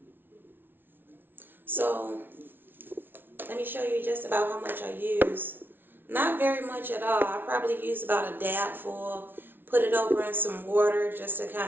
So let me show you just about how much I use. Not very much at all. I probably use about a dab full. Put it over in some water just to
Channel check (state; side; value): late; left; 0.10 ms